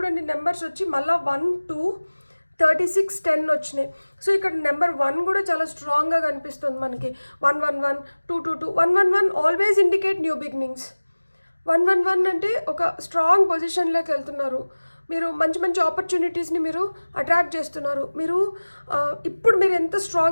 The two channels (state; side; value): inverted; both; correlation -1.00